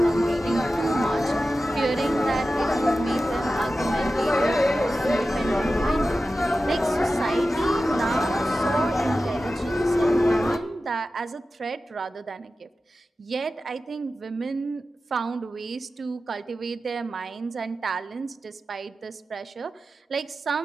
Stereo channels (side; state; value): both; normal; correlation 0.93